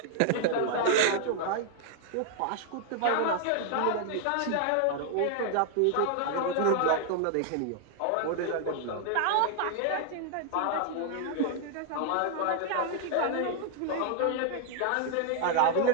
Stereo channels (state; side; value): different; both; correlation 0.00